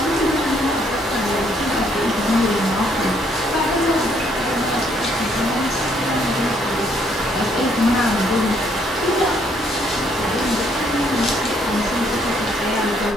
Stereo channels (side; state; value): both; normal; correlation 0.68